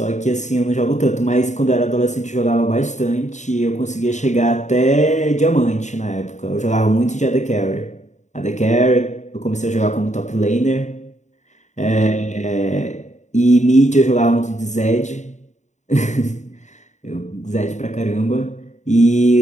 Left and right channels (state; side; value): late; right; 0.34 ms